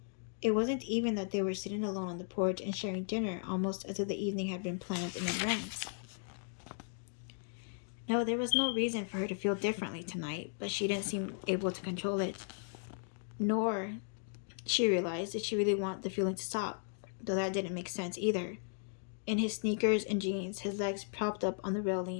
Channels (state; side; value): silent; right; digital silence